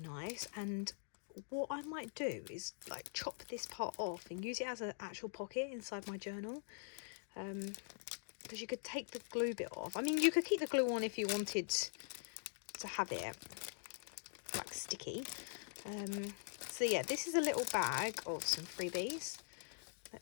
and what I might do is like chop this part off and use it as an actual pocket inside my journal, because you could take the glue bit off. I mean, you could keep the glue on if you wanted to have it like sticky. So yeah, this is a little bag of some freebies.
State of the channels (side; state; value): right; silent; digital silence